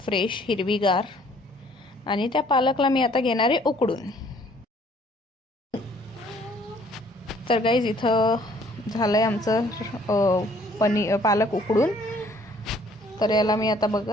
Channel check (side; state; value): both; normal; correlation 0.59